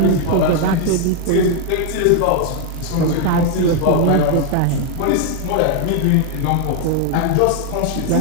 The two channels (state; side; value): different; both; correlation 0.00